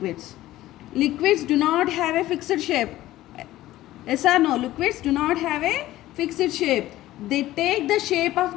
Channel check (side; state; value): right; quieter; 15.5 dB